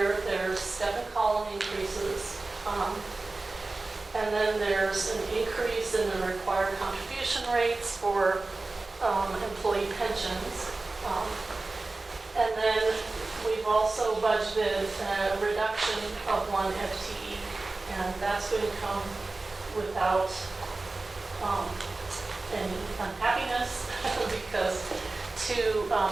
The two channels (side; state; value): left; quieter; 3.3 dB